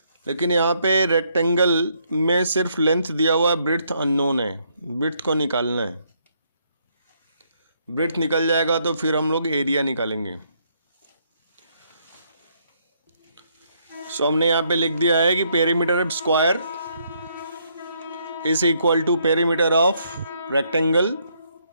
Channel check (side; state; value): both; inverted; correlation -0.72